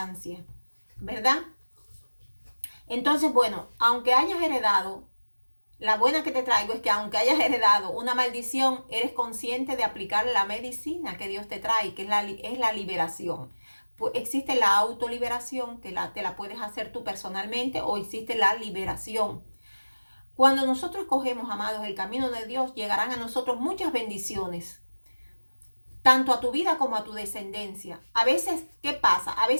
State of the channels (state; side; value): inverted; both; correlation -1.00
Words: ¿verdad? Entonces, bueno, aunque hayas heredado, la buena que te traigo es que aunque hayas heredado una maldición, eres consciente de aplicar la medicina que Dios te trae, que es la liberación. Pues existe la autoliberación, que te la puedes hacer tú personalmente, o existe la liberación. Cuando nosotros cogemos, amados, el camino de Dios, llegarán a nosotros muchas bendiciones, tanto a tu vida como a tu descendencia. A veces, ¿qué pasa? A